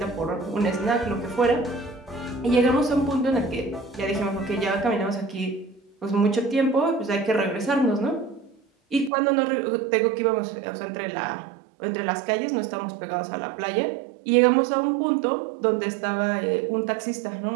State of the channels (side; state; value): left; drops out; at 9.1 s